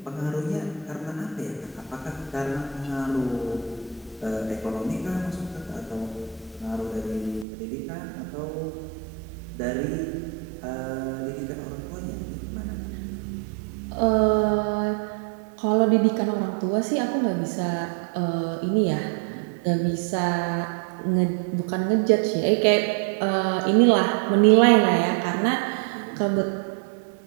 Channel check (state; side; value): drops out; left; at 7.5 s